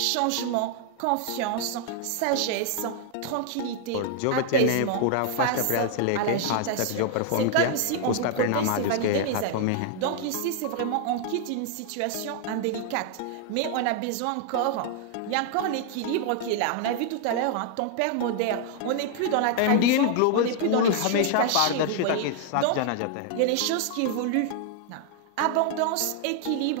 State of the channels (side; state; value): both; different; correlation 0.00